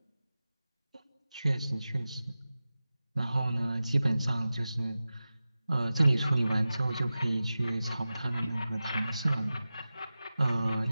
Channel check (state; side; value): inverted; both; correlation -0.95